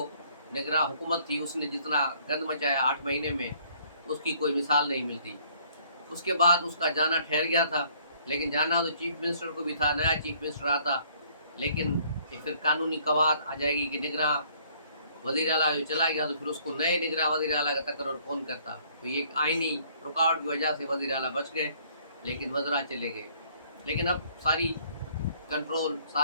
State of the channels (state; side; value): inverted; both; correlation -0.61